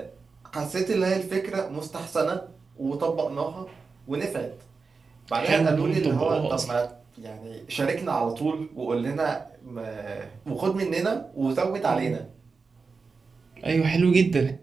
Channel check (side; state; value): left; quieter; 4.6 dB